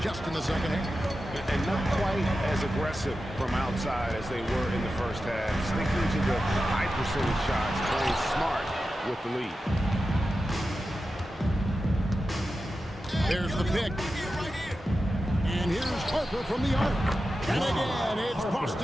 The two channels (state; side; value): normal; both; correlation 0.92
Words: just in the second half. And not quite as aggressive from outside as they were in the first half. Sticking to the high percentage shots, playing smart with the lead. There's the pick. And here's Harper from the arc. And again, it's